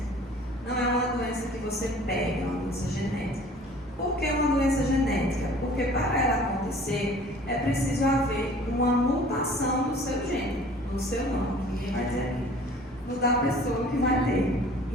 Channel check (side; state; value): both; normal; correlation 0.49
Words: Não é uma doença que você pega, é uma doença genética. Por que uma doença genética? Porque para ela acontecer, é preciso haver uma mutação no seu gene, no seu nome, ninguém vai dizer aqui, no da pessoa que vai ter.